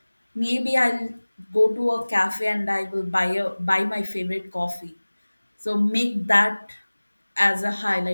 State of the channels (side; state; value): both; inverted; correlation -1.00